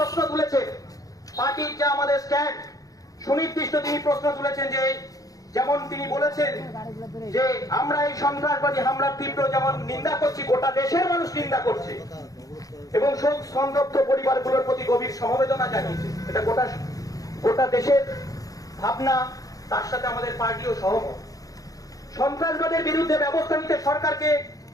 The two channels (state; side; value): late; right; 0.17 ms